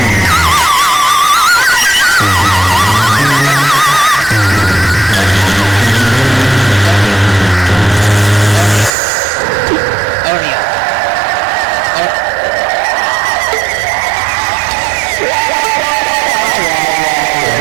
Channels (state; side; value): drops out; left; at 8.9 s